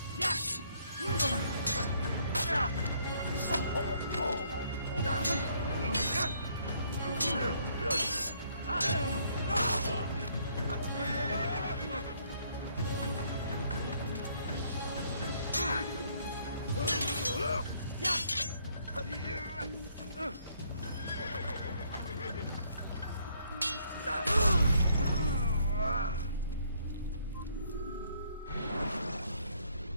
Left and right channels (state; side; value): inverted; both; correlation -0.67